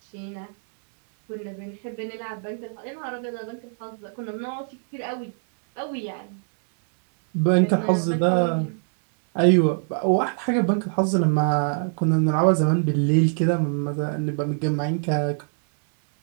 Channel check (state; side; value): silent; left; digital silence